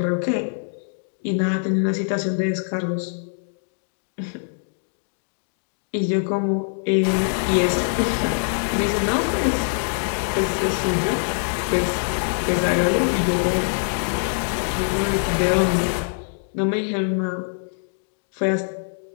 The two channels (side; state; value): right; silent; digital silence